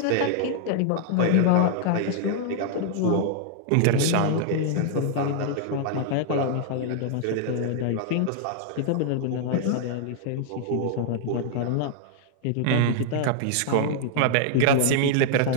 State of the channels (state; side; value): different; both; correlation 0.00